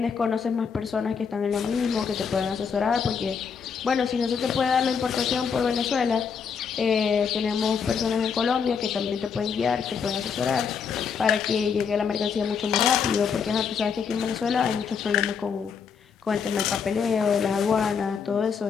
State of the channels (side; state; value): right; quieter; 6.4 dB